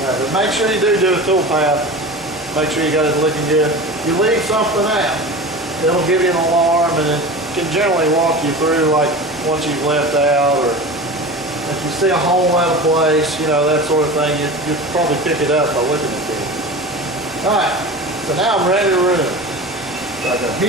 But make sure you do a tool path. Make sure you got it looking good. If you leave something out, it'll give you an alarm, and it can generally walk you through like once you've left out, or if you see a hole out of place, you know, that sort of thing, you probably pick it up by looking at it. Alright, so now I'm ready to run. So I go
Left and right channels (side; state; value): both; normal; correlation 0.32